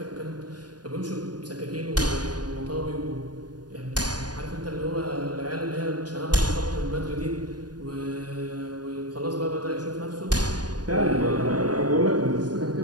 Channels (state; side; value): late; left; 0.69 ms